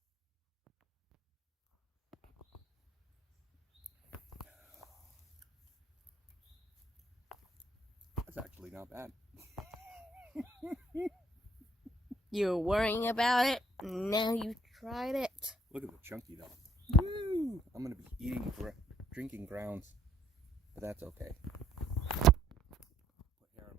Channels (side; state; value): both; normal; correlation 0.64